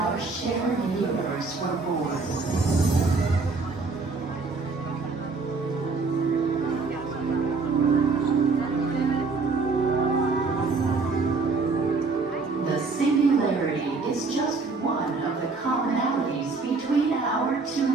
shared universe were born. The singularity is just one of the commonalities between our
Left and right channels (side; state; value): left; quieter; 4.1 dB